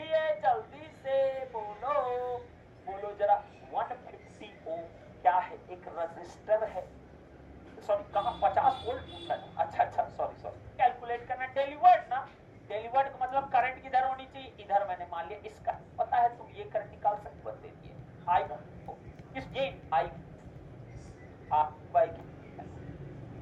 जल्दी से बोलो, बोलो जरा। 150 ओम क्या है, एक रजिस्टर है, सॉरी कहाँ 50 वोल्ट पूछा है, अच्छा सॉरी कैलकुलेट करना, डिलीवर्ड ना, डिलीवर्ड का मतलब करंट किधर होनी चाहिए, इधर, मैंने मान लिया इसका पता है, तुम ये करंट निकाल सकते हो, दे दिए आई इस ये आई बाई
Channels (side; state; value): both; identical; correlation 1.00